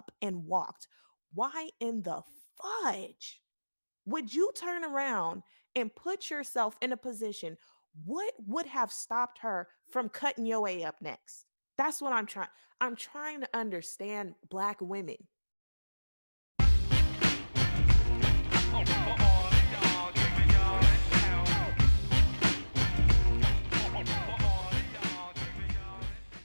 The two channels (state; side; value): inverted; both; correlation -1.00